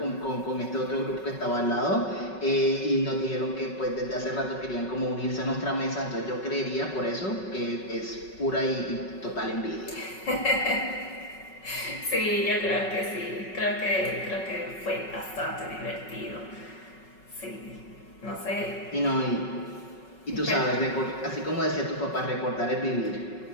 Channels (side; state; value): right; late; 5.4 ms